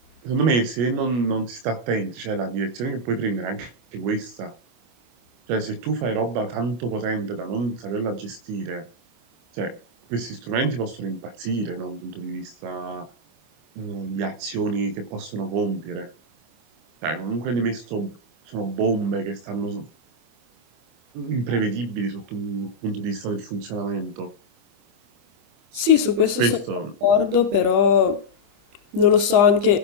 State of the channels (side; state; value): left; late; 25 ms